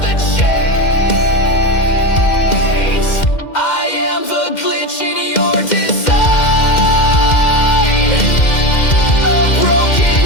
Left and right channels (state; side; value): late; right; 2.1 ms